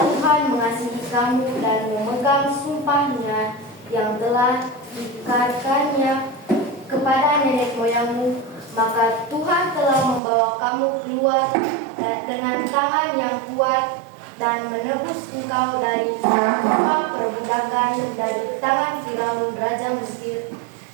Tuhan mengasihi kamu dan memegang sumpahnya yang telah diikrarkannya kepada nenek moyangmu, maka Tuhan telah membawa kamu keluar dengan tangan yang kuat dan menebus engkau dari rumah perbudakan dari tangan Firaun raja Mesir.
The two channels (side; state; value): left; drops out; at 10.2 s